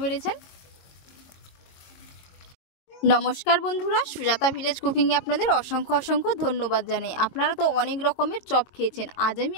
পেরেছেন। নমস্কার বন্ধুরা, সুজাতা ভিলেজ কুকিংয়ে আপনাদের অসংখ্য অসংখ্য ধন্যবাদ জানাই। আপনারা তো অনেক রকমের চপ খেয়েছেন। আজ আমি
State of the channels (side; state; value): right; late; 22 ms